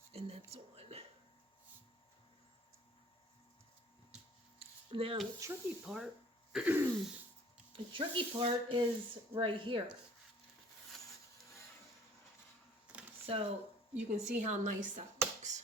And that's on. Now the tricky part, is right here. So you can see how nice that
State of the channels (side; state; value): both; normal; correlation 0.53